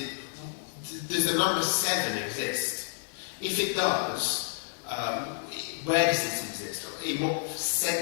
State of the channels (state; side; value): silent; right; 58 dB below the other